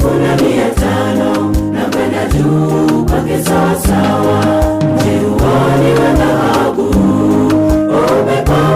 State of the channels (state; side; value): identical; both; correlation 1.00